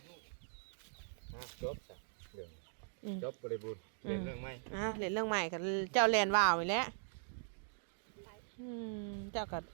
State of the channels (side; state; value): left; silent; digital silence